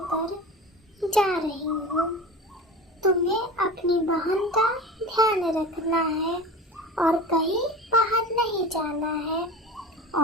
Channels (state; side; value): normal; both; correlation 0.32